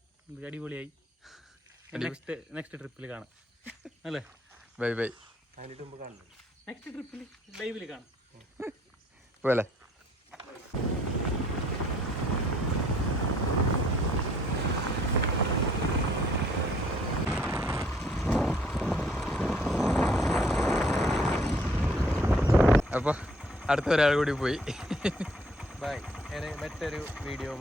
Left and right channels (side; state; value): both; normal; correlation 0.61